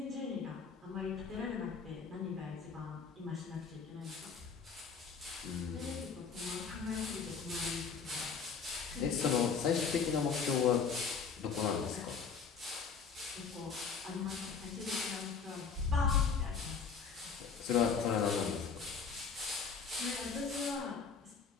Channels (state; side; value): quieter; right; 5.8 dB